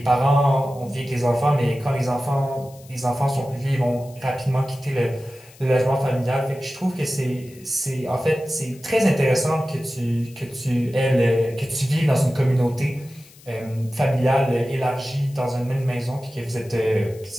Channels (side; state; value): left; noise; hiss, 24 dB below the sound